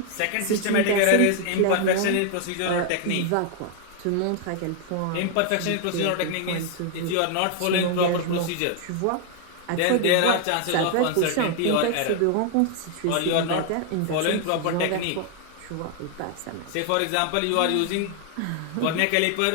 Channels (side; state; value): both; different; correlation 0.00